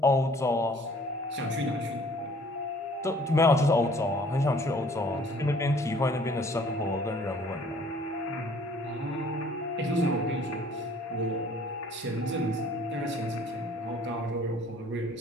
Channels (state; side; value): normal; both; correlation 0.55